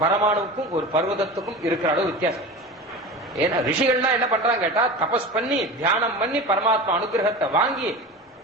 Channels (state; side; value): normal; both; correlation 0.31